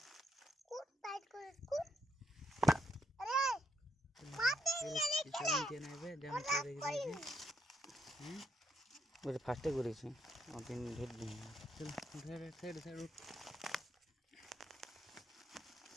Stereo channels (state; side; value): normal; both; correlation 0.77